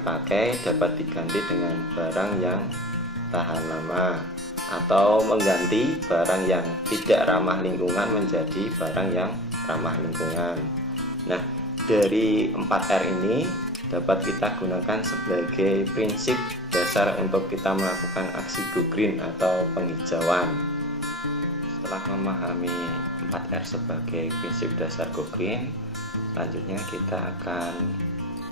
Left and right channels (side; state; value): both; normal; correlation 0.33